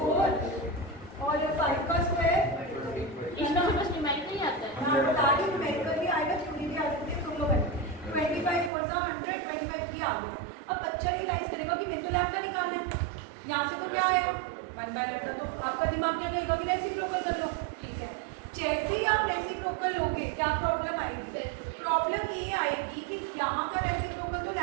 और 5 का स्क्वायर। इसका बस न्यूमेरिकल ही आता है। हाँ बता दी, न्यूमेरिकल भी आएगा, थ्योरी भी आ सकती है। सुन लो बच्चे 25 और 100 25 भी आ गया। अब बच्चा रियलाइज करेगा कि मेरे को लैम्डा निकालना है। यहाँ से तो क्या आएगा 1/λ। तो आपका दिमाग क्या कहेगा कि रेसिप्रोकल कर लो। ठीक है, जैसे ही आप रेसिप्रोकल लोगे क्या प्रॉब्लम आएगी? प्रॉब्लम ये आएगी कि यहाँ का रेसिप्रोकल तो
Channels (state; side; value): drops out; left; at 8.7 s